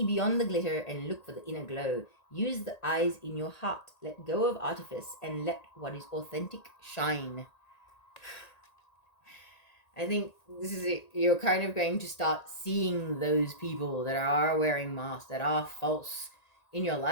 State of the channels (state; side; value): late; right; 1.9 ms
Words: beyond the glitter and look for the inner glow. Use the eyes in your heart. Let go of artifice and let what is authentic shine. I think this is it. You're kind of going to start seeing those people that are wearing masks, that are false in your